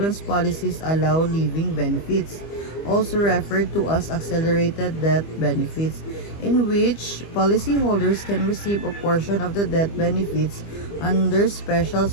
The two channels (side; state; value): right; late; 25 ms